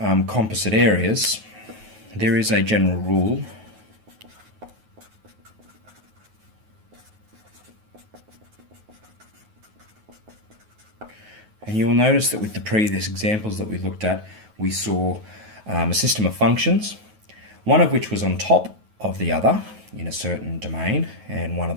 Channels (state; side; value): late; left; 9.3 ms